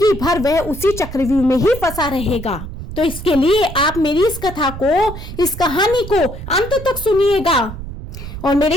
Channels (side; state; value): right; noise; rumble, 10 dB below the sound